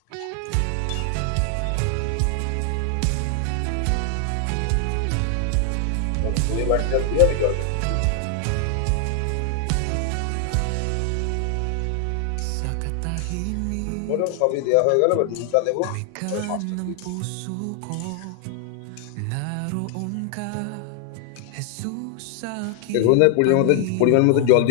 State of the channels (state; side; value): different; both; correlation 0.00